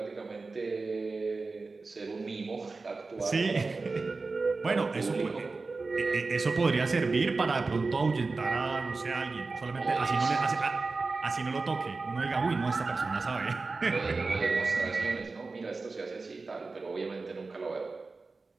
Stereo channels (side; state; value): left; quieter; 3.9 dB